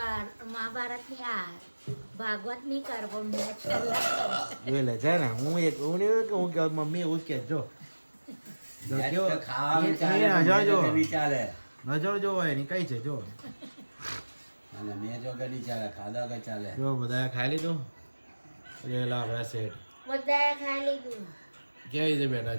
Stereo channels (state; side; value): inverted; both; correlation -1.00